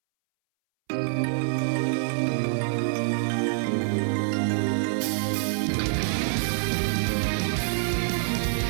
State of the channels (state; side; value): silent; left; 61 dB below the other